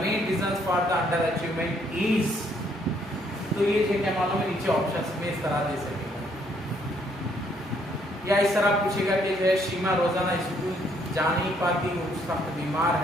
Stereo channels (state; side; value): normal; both; correlation 0.68